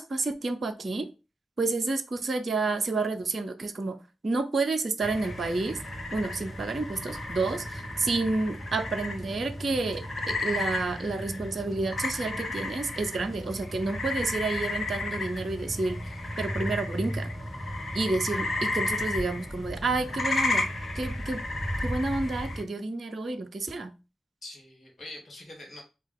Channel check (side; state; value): both; normal; correlation 0.83